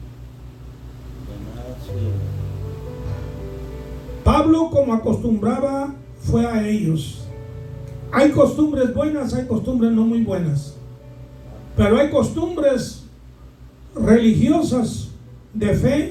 Pablo, como acostumbraba, fue a ellos. Hay costumbres buenas, hay costumbres no muy buenas, pero hay costumbres religiosas de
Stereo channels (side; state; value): both; identical; correlation 1.00